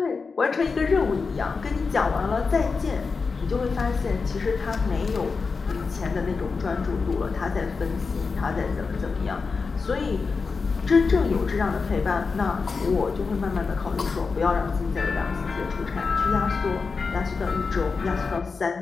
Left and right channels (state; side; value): quieter; right; 4.7 dB